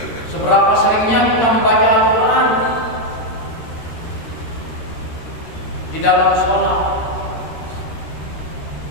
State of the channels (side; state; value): right; late; 13 ms